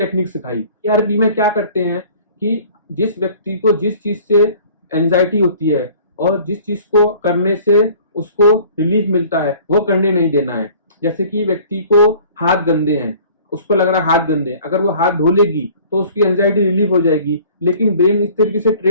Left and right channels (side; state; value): both; inverted; correlation -0.50